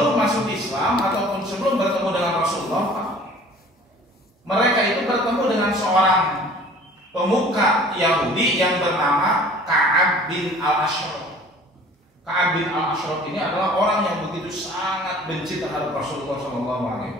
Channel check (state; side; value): normal; both; correlation 0.48